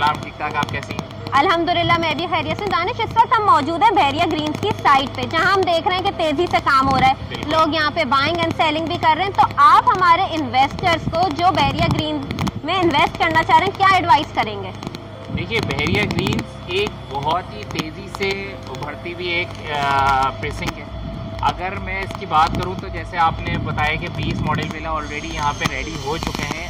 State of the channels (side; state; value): both; identical; correlation 1.00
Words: ठीक ठाक, आप कैसी हैं? अल्हम्दुलिल्लाह मैं भी खैरियत से। दानिश, इस वक्त हम मौजूद हैं बहरिया ग्रीन्स की साइट पे, जहां हम देख रहे हैं कि तेजी से काम हो रहा है, लोग यहाँ पे बाइंग एंड सेलिंग भी कर रहे हैं। तो आप हमारे इन्वेस्टर्स को जो बहरिया ग्रीन्स में इन्वेस्ट करना चाह रहे हैं, क्या एडवाइस करेंगे? देखिए, बहरिया ग्रीन्स एक बहुत ही तेज़ी से उभरती हुई एक प्रेसिंग है। अगर मैं इसकी बात करूं तो जैसे आपने बताया कि 20 मॉडल विला ऑलरेडी यहाँ पे रेडी हो चुके हैं।